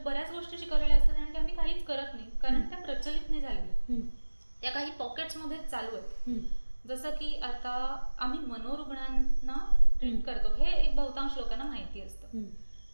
गोष्टी शिकवलेल्या असतात आणि त्या आम्ही काहीच करत नाही, कारण त्या प्रचलित नाही झालेल्या, त्या काही पॉकेट्समध्येच चालू आहेत. जसं की आता आम्ही मनोरुग्णांना ट्रीट करतो, हे एक बहुतांश लोकांना माहिती असतं.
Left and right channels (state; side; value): inverted; both; correlation -1.00